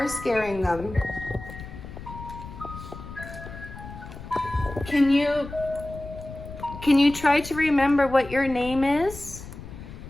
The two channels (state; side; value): noise; left; rumble, 13 dB below the sound